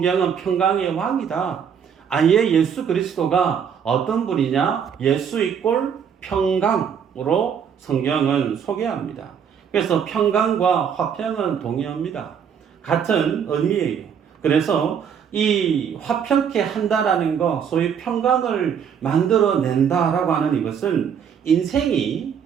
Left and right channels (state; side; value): quieter; left; 7.6 dB